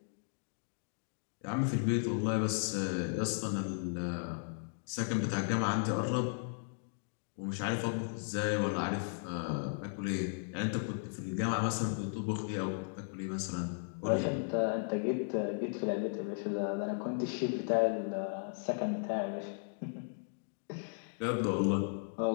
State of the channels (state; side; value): silent; right; digital silence